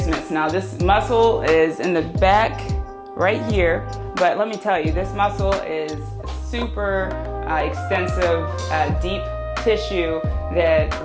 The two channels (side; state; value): both; identical; correlation 1.00